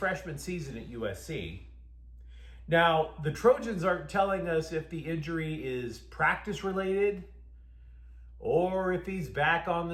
season at USC. Now, the Trojans aren't telling us if the injury is practice-related or if he's back on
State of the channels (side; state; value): both; identical; correlation 1.00